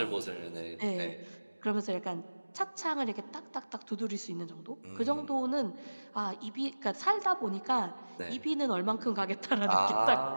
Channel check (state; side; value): inverted; both; correlation -1.00